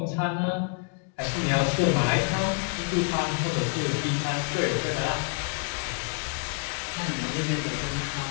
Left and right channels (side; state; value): right; quieter; 37.1 dB